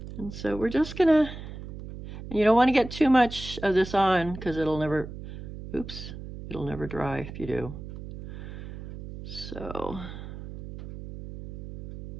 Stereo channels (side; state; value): right; noise; hum, 11 dB below the sound